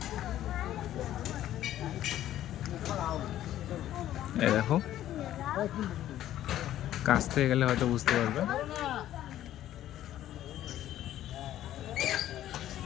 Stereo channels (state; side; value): quieter; right; 12.6 dB